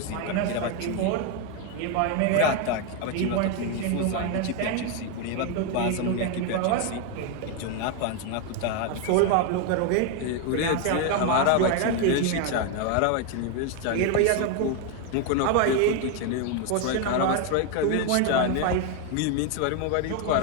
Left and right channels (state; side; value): different; both; correlation 0.01